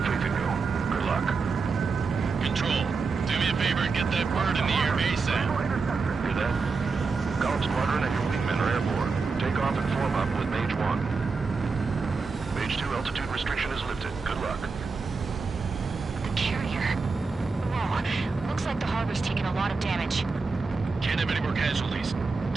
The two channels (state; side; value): quieter; left; 4.5 dB